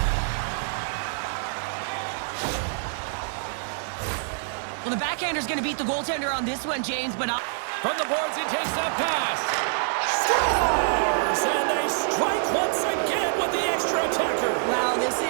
Well, the backhander's going to beat the goaltender on this one, James, but... From the boards, he takes that pass. Scores! And they strike once again with the extra attacker. Wow, this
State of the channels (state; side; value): silent; left; 61 dB below the other